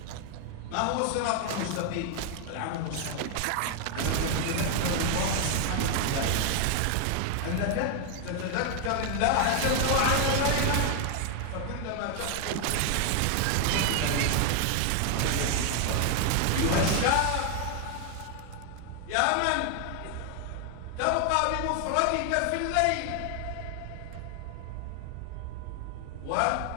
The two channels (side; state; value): both; different; correlation 0.00